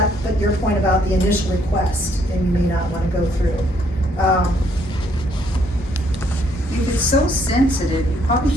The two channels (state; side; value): normal; both; correlation 0.68